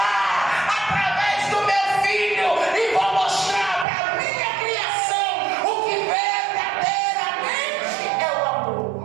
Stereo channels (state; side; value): drops out; left; at 3.9 s